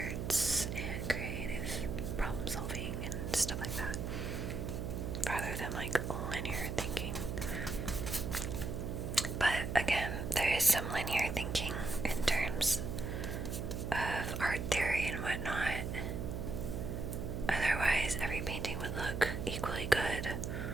and creative problem solving and stuff like that, rather than like linear thinking. But again, there is some linear thinking in terms of art theory and whatnot. Otherwise, every painting would look equally good,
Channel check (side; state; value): right; noise; hum, 3 dB below the sound